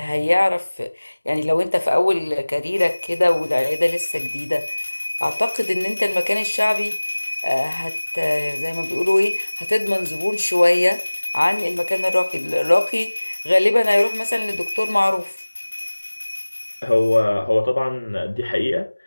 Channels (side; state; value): both; inverted; correlation -1.00